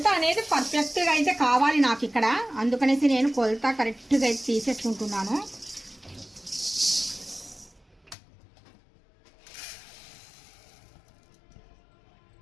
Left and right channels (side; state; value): right; drops out; at 8.2 s